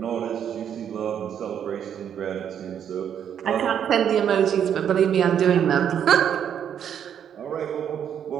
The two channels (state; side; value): quieter; left; 8.9 dB